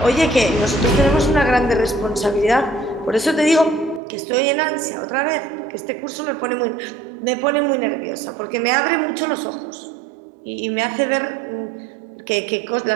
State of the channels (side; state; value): left; drops out; at 4.0 s